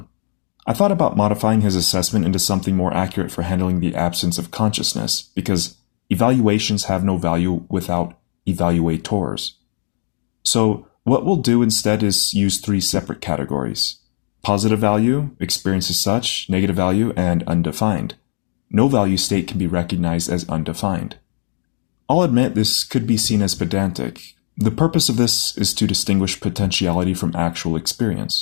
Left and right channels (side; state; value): right; silent; digital silence